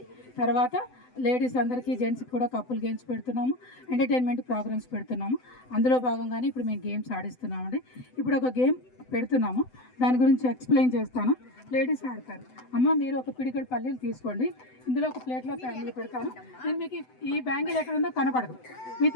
తర్వాత లేడీస్ అందరికీ, జెంట్స్కి కూడా కప్పుల్ గేమ్స్ పెడుతున్నాము, ఎంటర్టైన్మెంట్ ప్రోగ్రామ్స్ పెడుతున్నాము. అందులో భాగంగానే ఇప్పుడు మేము గేమ్స్ ఆడిస్తున్నామండి. ఇప్పుడు ఒక గేమ్ పెడుతున్నాము, దాని గురించి ఎక్స్ప్లెయిన్ చేస్తాను. లేడీస్ ఆడతారు. అమ్మ, మీరు ఒక పిడికెడు పల్లీలు తీసుకోండి, ఇందులో ఒక ప్లేట్లో బ్యాంగిల్ పెడతాను. నేను మీకు ఈ బ్యాంగిల్ ఎక్కడ ఉందో కనపడదు, మీ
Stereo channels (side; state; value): right; late; 7.9 ms